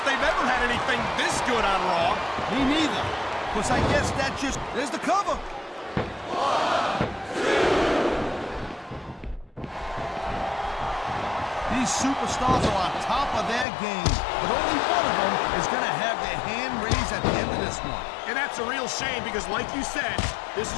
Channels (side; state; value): right; drops out; at 13.7 s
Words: they've ever had anything this good on Raw. Me neither. Because I guess that just... There's the cover. These superstars are on top of their game, but only one of them is going to have their hand raised at the end of this one. And that's a real shame because, like you said, this